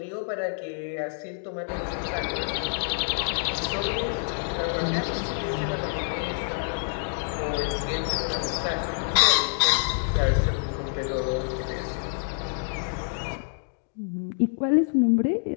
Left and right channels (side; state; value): right; silent; digital silence